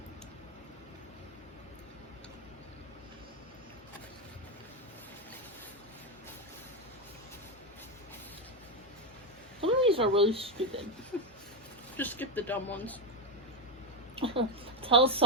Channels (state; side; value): normal; both; correlation 0.08